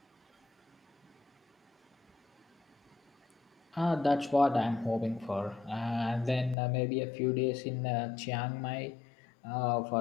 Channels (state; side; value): drops out; right; at 6.6 s